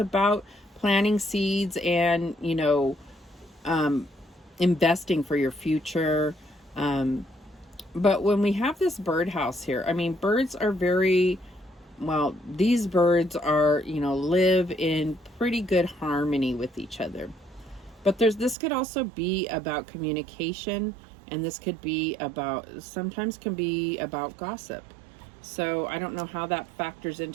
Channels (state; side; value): drops out; left; at 18.6 s